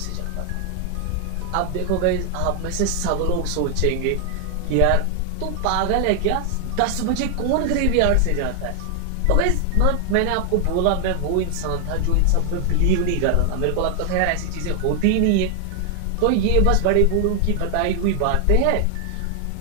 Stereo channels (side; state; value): both; different; correlation 0.00